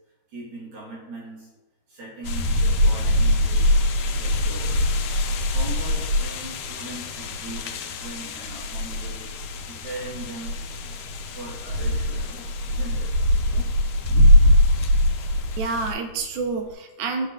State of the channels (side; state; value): left; late; 13 ms